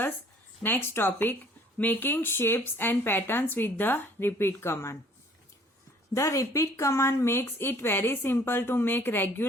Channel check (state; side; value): normal; both; correlation 0.56